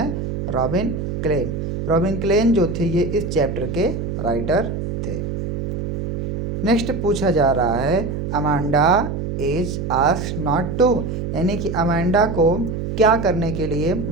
Robin Klein. रॉबिन क्लेन जो थे ये इस चैप्टर के राइटर थे। नेक्स्ट पूछा जा रहा है Amanda is asked not to, यानी कि अमांडा को क्या करने के लिए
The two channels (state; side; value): noise; right; hum, 4 dB below the sound